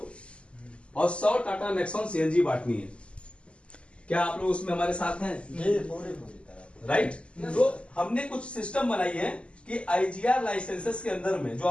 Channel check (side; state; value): right; late; 0.055 ms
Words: और 100 टाटा नेक्सॉन सीएनजी बांटनी है। क्या आप लोग उसमें हमारे साथ हैं? राइट। तो हमने कुछ सिस्टम बनाई है कि आईजीआर लाइसेंसेस के अंदर में, जो